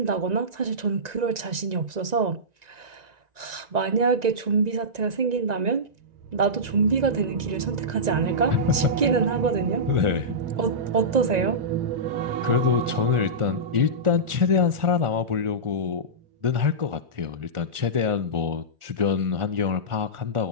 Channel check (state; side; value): late; left; 1.9 ms